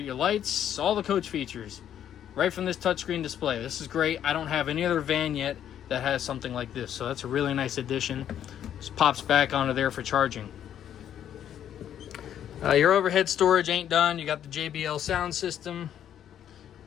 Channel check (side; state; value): right; quieter; 10.1 dB